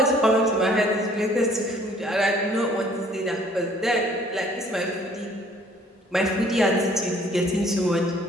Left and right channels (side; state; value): both; normal; correlation 0.58